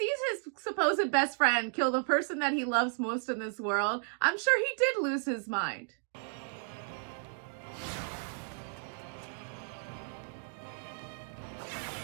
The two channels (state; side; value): silent; left; 55 dB below the other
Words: his supposed best friend kill the person that he loves most in this world, I'm sure he did lose his mind.